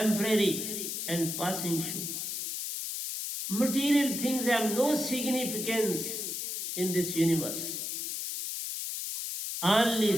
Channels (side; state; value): left; noise; hiss, 4 dB below the sound